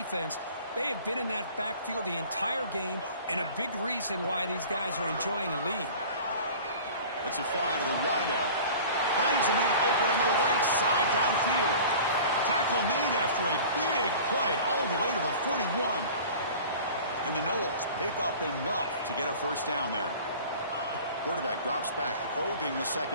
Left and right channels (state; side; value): inverted; both; correlation -0.42